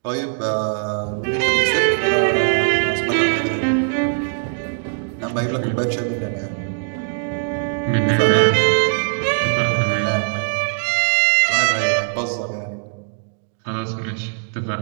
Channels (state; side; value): silent; left; digital silence